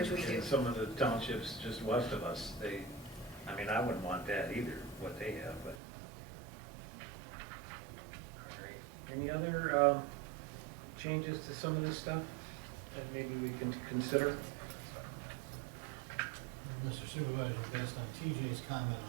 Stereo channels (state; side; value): drops out; left; at 5.8 s